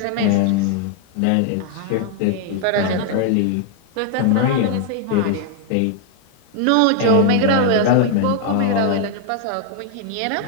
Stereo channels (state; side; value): different; both; correlation 0.00